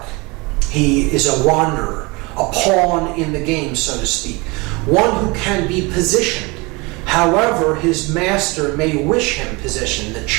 He is a wanderer, a pawn in the game, so to speak. One who can be positioned. However, his master may wish him positioned, the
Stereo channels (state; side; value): quieter; left; 26.1 dB